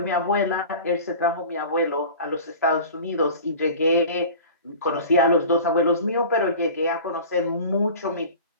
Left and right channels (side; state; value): both; inverted; correlation -0.39